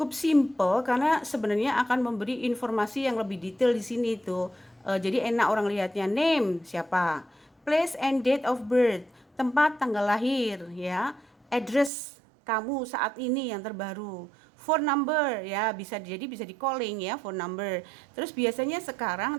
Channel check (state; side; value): drops out; left; at 11.9 s